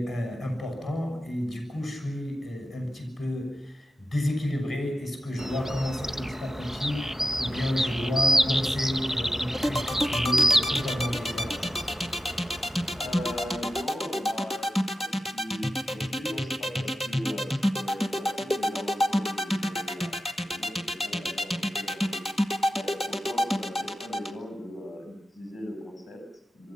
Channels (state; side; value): normal; both; correlation 0.90